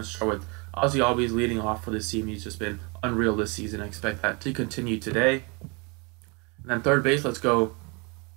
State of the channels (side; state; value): left; quieter; 30.4 dB